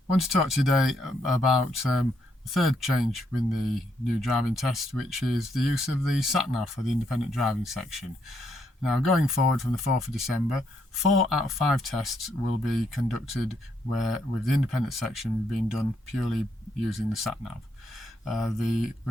want to talk today about the third change in the new driving test, which is the use of the Sat Nav for the independent driving section. Now, going forward from the 4th of December, 4 out of 5 tests will be conducted with the independent section being done purely using the Sat Nav. The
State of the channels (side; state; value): both; normal; correlation 0.75